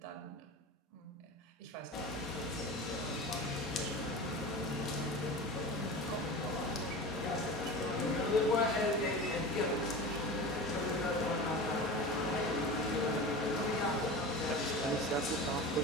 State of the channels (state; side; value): normal; both; correlation 0.31